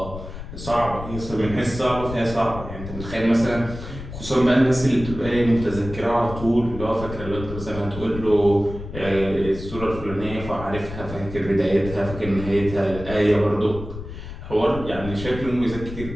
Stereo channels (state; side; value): noise; left; rumble, 10 dB below the sound